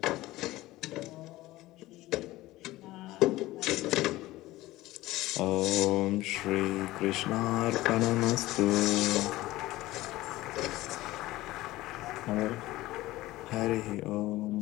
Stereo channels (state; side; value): quieter; right; 17.6 dB